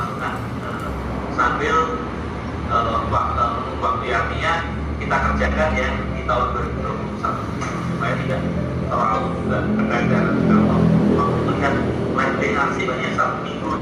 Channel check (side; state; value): both; identical; correlation 1.00